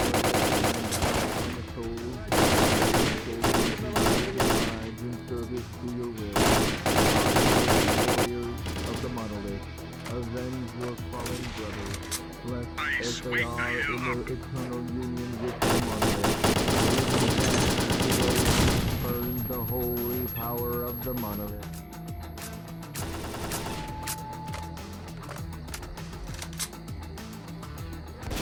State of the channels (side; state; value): both; identical; correlation 1.00